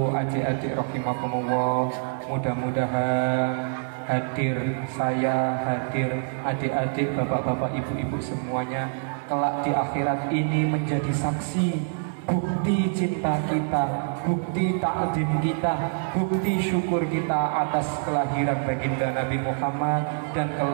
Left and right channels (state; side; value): silent; left; 61 dB below the other